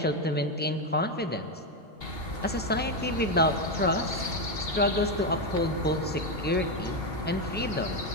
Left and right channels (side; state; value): both; normal; correlation 0.08